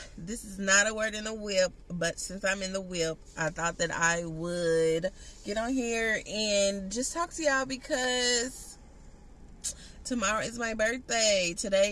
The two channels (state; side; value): identical; both; correlation 1.00